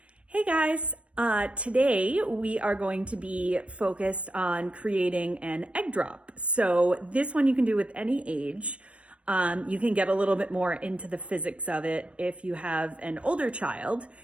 Hey guys, today we are going to be focused on creating an egg drop. So this one you can do with any age. You can get a little bit more into the physics of it if you have an older child,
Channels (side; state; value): left; late; 0.061 ms